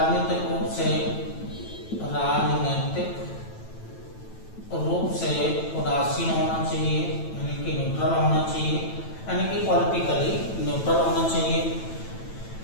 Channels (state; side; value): late; right; 9.1 ms